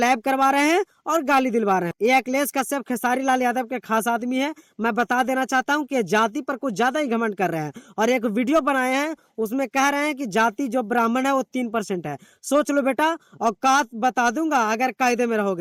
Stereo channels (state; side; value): identical; both; correlation 1.00